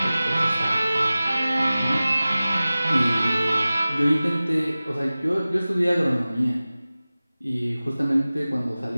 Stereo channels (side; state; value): both; inverted; correlation -0.97